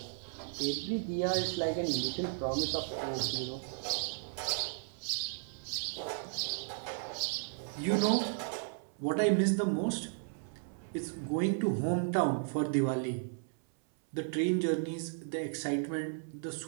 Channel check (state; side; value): silent; left; 55 dB below the other